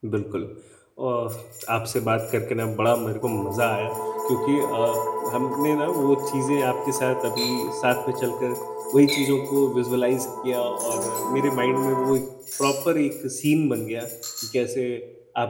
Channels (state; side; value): identical; both; correlation 1.00